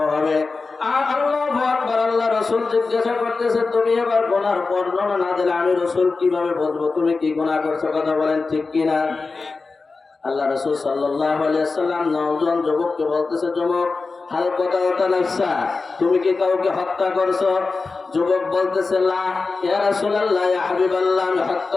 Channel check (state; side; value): quieter; right; 4.1 dB